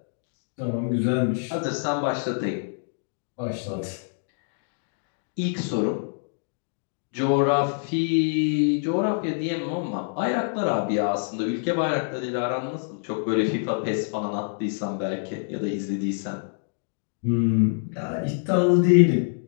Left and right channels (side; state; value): right; silent; digital silence